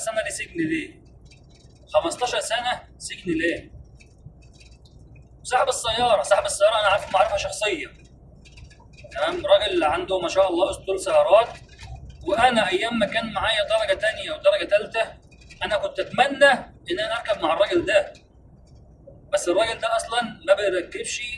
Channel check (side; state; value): both; identical; correlation 1.00